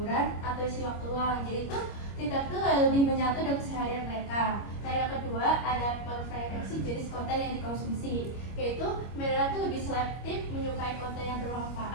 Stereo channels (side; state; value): right; late; 25 ms